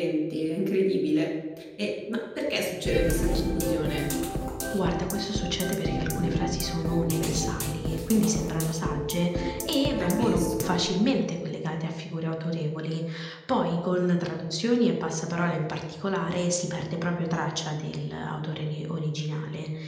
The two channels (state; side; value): identical; both; correlation 1.00